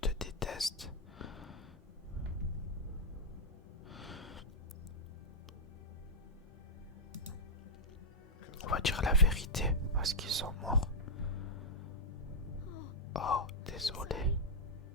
détestent? On va dire la vérité, parce qu'ils sont morts. Oh, désolé.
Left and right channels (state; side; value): normal; both; correlation -0.07